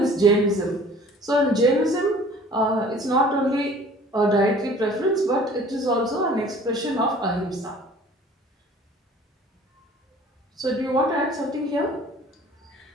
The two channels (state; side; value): normal; both; correlation 0.50